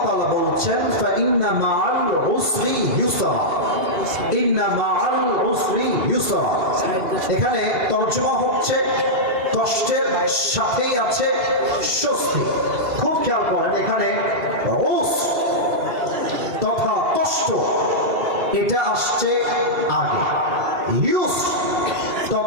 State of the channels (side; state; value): left; late; 2.7 ms